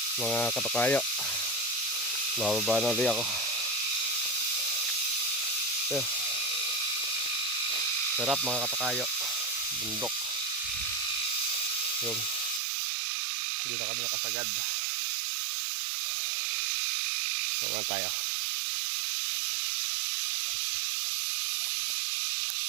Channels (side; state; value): left; drops out; at 12.6 s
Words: mga katukayo. Mababa na ulit ako. So, sarap mga katukayo. Bundok. Yun. Hindi na kami nakasagad. Baba tayo.